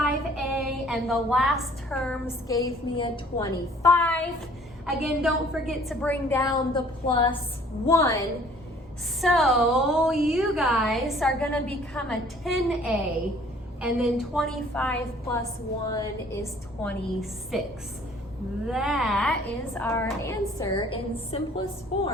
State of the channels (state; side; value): normal; both; correlation 0.55